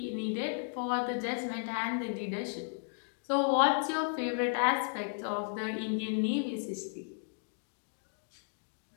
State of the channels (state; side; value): silent; right; digital silence